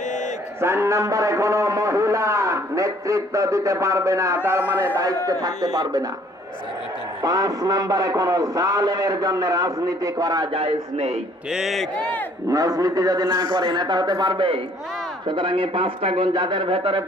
4 নম্বরে কোন মহিলা নেতৃত্ব দিতে পারবে না, তার মানে দায়িত্বে থাকতে পারবে না। 5 নম্বরে কোন জালেমের জন্য রাজনীতি করা জায়েজ নেই। ঠিক, রাজনীতি যদি না করে নেতা হতে পারবে? সুতরাং এই 5টা গুণ যাদের ভেতরে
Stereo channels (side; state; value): both; normal; correlation 0.60